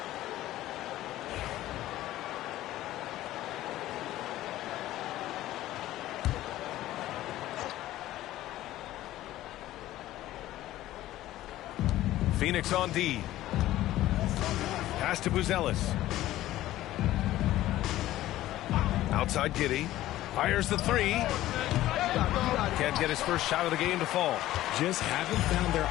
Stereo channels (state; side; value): quieter; right; 14.9 dB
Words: Phoenix on D. Pass to Buzelis. Outside Giddey. Fires the 3. Can't get his first shot of the game to fall. Just haven't found their